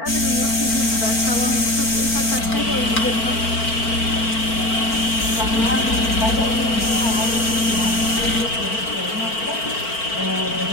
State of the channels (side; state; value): right; late; 4.4 ms